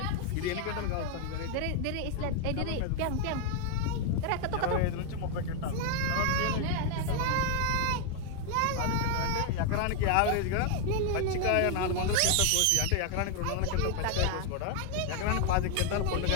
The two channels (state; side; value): different; both; correlation 0.00